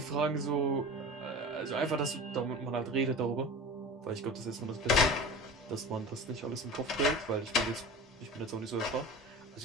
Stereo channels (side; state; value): both; normal; correlation 0.35